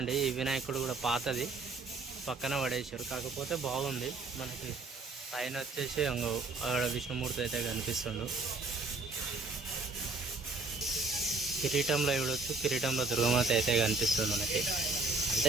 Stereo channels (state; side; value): quieter; left; 3.7 dB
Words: ఈ వినాయకుడు కూడా పాతది పక్కన పడేసారు, కాకపోతే బాగుంది. మనకి పైన వచ్చేసి అక్కడ విష్ణుమూర్తి అయితే కనిపిస్తుండు. కిరీటంలో చూడొచ్చు, కిరీటంలో దుర్గమాత అయితే కనిపిస్తుంది మనకి.